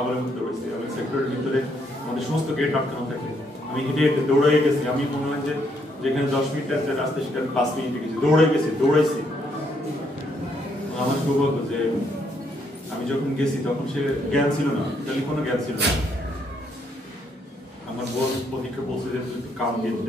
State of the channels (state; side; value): normal; both; correlation 0.73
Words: মধ্যে হয়েছি। আমি সেক্টরের ভিতরে আমাদের সমস্ত গেট আটকানো থাকে, আমি হেঁটে হেঁটে দৌড়াই গেছি। আমি মনে হয় যে যেখানে 10 মিনিটের যে রাস্তা সেখানে 5 মিনিটে গেছি, দৌড়াইছি। আমার সৌভাগ্য যে আমি যখন গেছি তখন সে জ্ঞান ছিল না, টেলিফোনও জ্ঞান ছিল না। আমার বোন প্রতীক্ষা বলছে যে তুই কাম দিয়ে